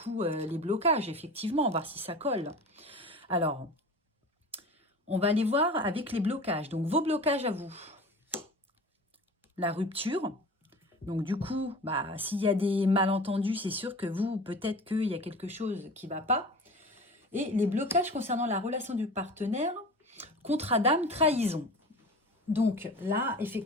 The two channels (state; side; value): normal; both; correlation 0.36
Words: les blocages, effectivement, voir si ça colle. Alors, on va aller voir avec les blocages. Donc vos blocages à vous. La rupture. Donc du coup, s'il y a des malentendus, c'est sûr que vous, peut-être qu'il y a quelque chose qui ne va pas. Et les blocages concernant la relation du partenaire, contrat d'âme, trahison. Donc là,